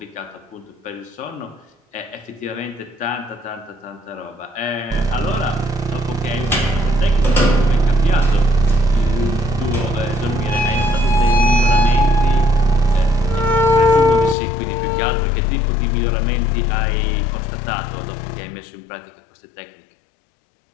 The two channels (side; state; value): right; drops out; at 14.4 s